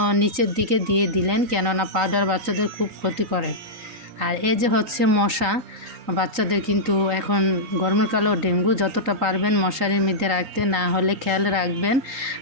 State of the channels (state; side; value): late; left; 3.9 ms